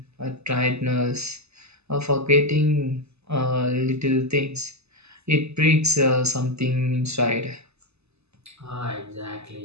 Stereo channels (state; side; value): late; left; 0.80 ms